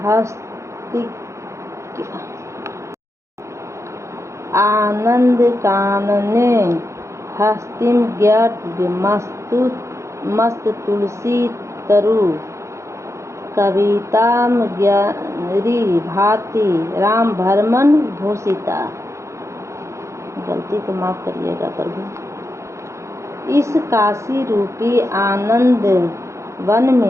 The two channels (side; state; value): left; late; 0.14 ms